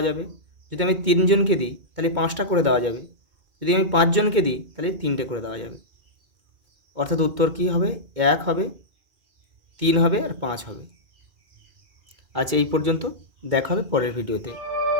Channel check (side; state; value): left; late; 2.4 ms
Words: যাবে, যদি আমি 3 জনকে দিই তাহলে 5টা করে দেওয়া যাবে, যদি আমি 5 জনকে দিই তাহলে 3টে করে দেওয়া যাবে। অর্থাৎ উত্তর কী হবে, 1 হবে, 3 হবে আর 5 হবে। আচ্ছা এই পর্যন্ত, দেখা হবে পরের ভিডিওতে।